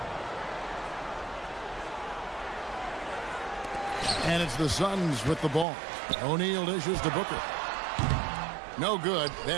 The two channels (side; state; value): left; drops out; at 5.7 s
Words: And it's the Suns with the ball. O'Neal dishes to Booker. No good.